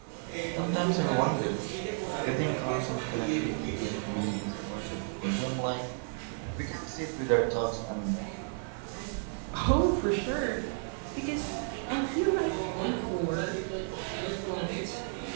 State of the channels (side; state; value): left; silent; 56 dB below the other